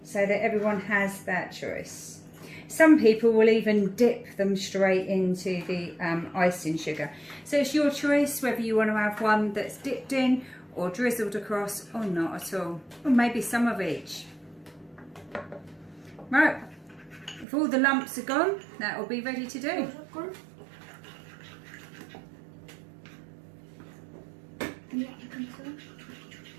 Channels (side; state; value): left; drops out; at 17.4 s